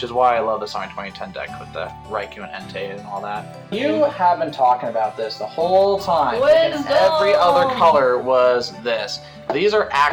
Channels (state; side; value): identical; both; correlation 1.00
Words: is why I love this on my 2010 deck with the Raikou and Entei and all that. You have been talking about this the whole time. Every other color was this. These are